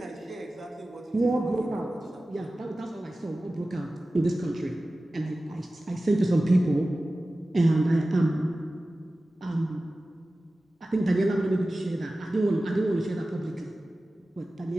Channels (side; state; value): both; normal; correlation 0.96